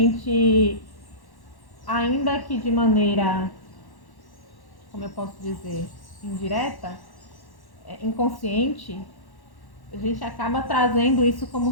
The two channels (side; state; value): right; late; 1.1 ms